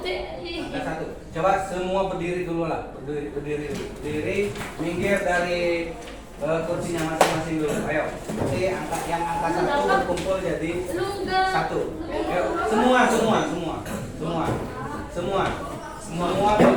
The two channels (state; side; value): identical; both; correlation 1.00